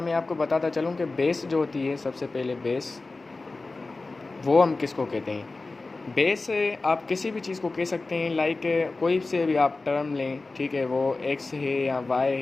मैं आपको बताता चलूँ कि बेस जो होती है, सबसे पहले बेस वो हम किसको कहते हैं। बेस आप किसी भी चीज़ को कह सकते हैं, लाइक कोई से भी आप टर्म लें, ठीक है, वो एक्स है या वाई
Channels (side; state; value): right; quieter; 3.5 dB